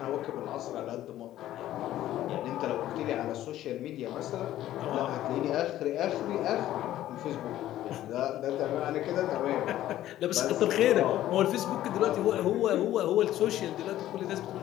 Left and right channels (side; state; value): right; quieter; 13.4 dB